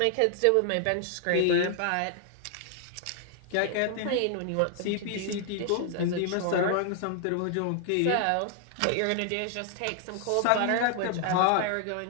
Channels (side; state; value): both; different; correlation 0.00